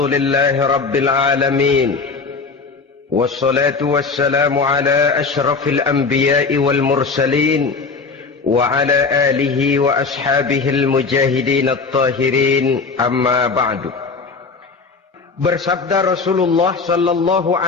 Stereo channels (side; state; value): right; quieter; 4.5 dB